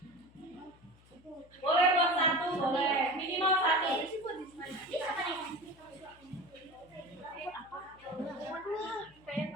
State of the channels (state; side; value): noise; left; hum, 27 dB below the sound